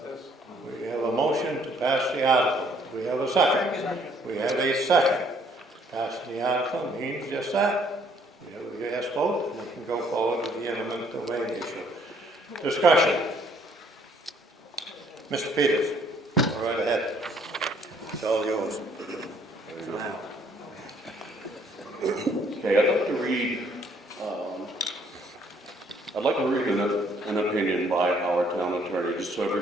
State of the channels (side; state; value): both; normal; correlation 0.64